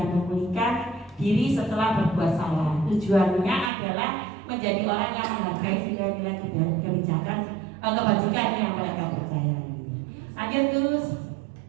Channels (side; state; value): left; drops out; at 3.7 s